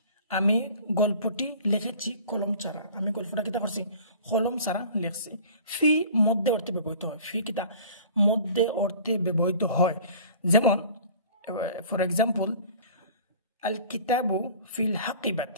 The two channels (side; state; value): both; inverted; correlation -0.45